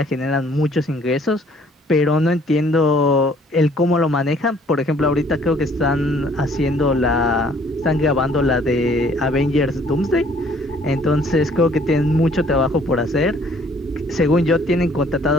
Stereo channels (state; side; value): normal; both; correlation 0.59